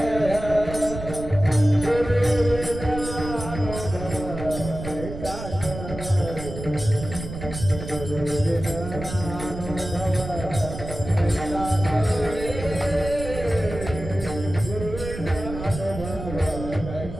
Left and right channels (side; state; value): right; noise; rumble, 9 dB below the sound